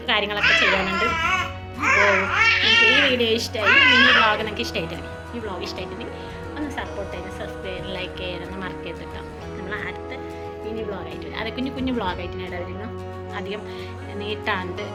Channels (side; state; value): both; identical; correlation 1.00